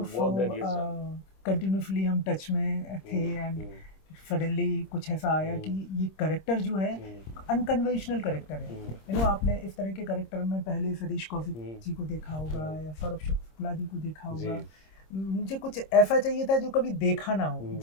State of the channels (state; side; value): late; right; 26 ms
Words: work that he has done. Continuously हम टच में थे एंड सडनली कुछ ऐसा आया कि ये कैरेक्टर जो है अनकन्वेंशनल कैरेक्टर है। आपने इस तरह के कैरेक्टर में पहले सतीश कौशिक जी को देखा होगा या सौरभ शुक्ला जी को देखा होगा। मुझे कुछ ऐसा चाहिए था जो कभी देखा ना हो,